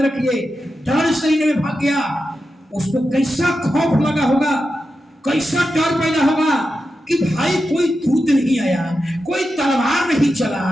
रखिए, डर से निनवे भाग गया। उसको कैसा खौफ लगा होगा, कैसा डर पैदा होगा कि भाई कोई दूत नहीं आया, कोई तलवार नहीं चला,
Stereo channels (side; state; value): both; normal; correlation 0.90